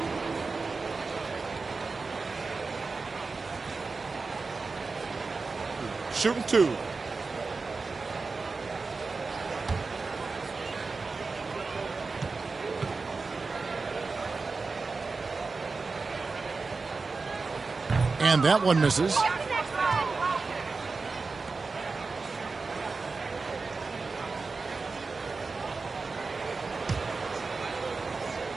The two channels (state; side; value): quieter; left; 4.2 dB